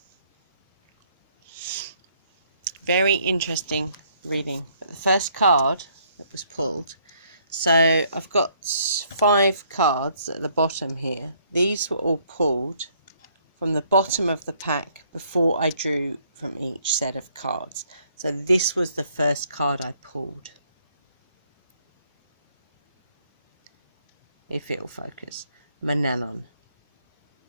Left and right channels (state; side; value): inverted; both; correlation -0.66